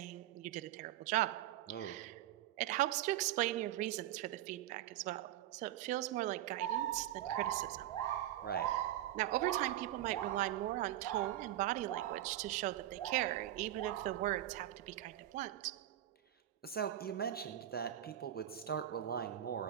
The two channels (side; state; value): left; quieter; 13.2 dB